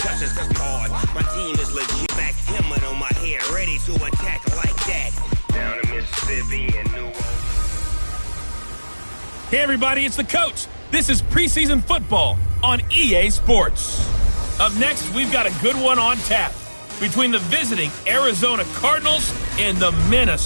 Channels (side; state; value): both; inverted; correlation -1.00